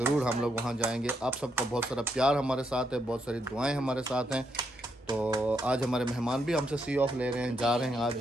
हम लोग वहाँ जाएंगे। आप सबका बहुत सारा प्यार हमारे साथ है, बहुत सारी दुआएं हमारे साथ हैं। तो आज हमारे मेहमान भी हमसे सी ऑफ ले रहे हैं, जा रहे हैं, आज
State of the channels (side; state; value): both; normal; correlation 0.78